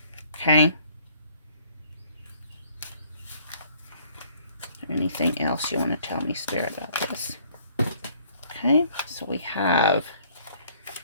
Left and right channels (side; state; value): both; inverted; correlation -0.60